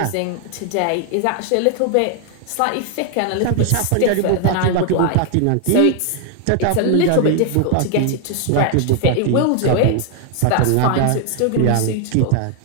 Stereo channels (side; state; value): both; different; correlation 0.00